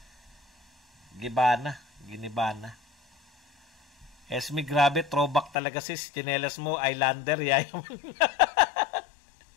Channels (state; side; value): drops out; right; at 5.6 s